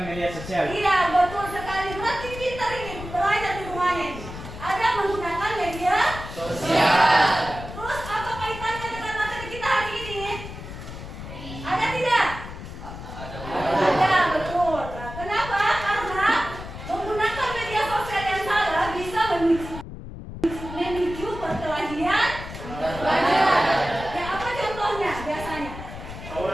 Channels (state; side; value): noise; left; rumble, 11 dB below the sound